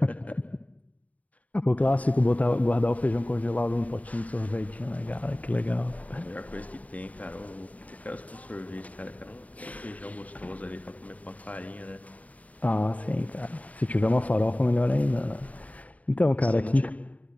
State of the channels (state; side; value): late; right; 0.070 ms